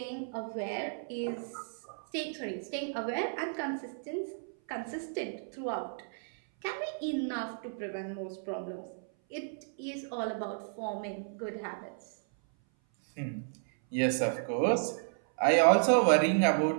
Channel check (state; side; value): silent; left; 56 dB below the other